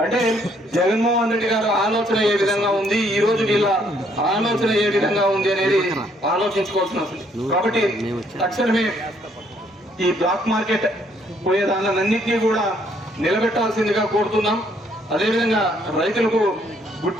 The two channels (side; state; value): both; normal; correlation 0.67